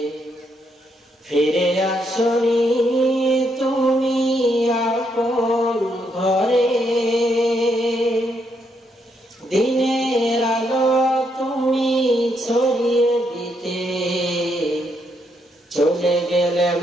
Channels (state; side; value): normal; both; correlation 0.77